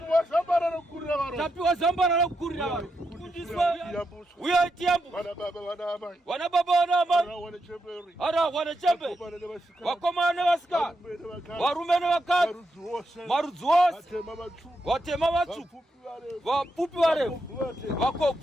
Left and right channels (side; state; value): both; normal; correlation 0.84